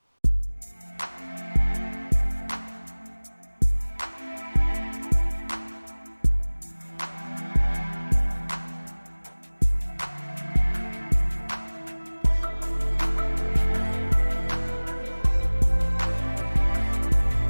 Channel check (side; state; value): both; inverted; correlation -1.00